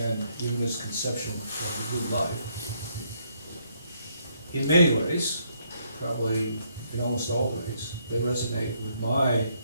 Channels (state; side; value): inverted; both; correlation -0.71